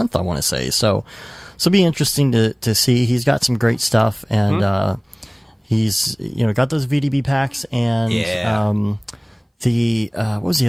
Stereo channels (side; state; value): both; identical; correlation 1.00